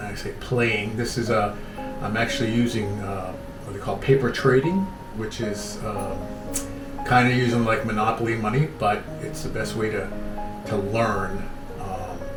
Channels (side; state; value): both; identical; correlation 1.00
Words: I say, playing. This is I'm actually using what they call paper trading, which is kind of using like monopoly money, but it's the best way to learn